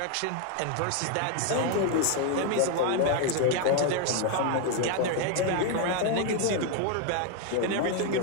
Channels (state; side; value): different; both; correlation 0.01